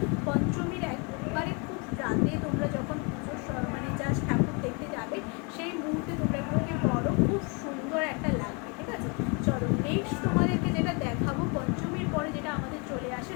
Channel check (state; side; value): quieter; right; 32.9 dB